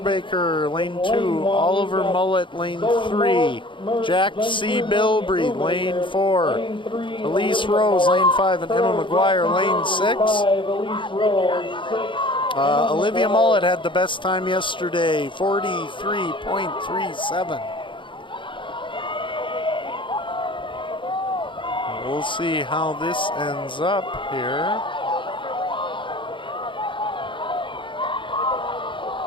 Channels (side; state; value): right; late; 0.24 ms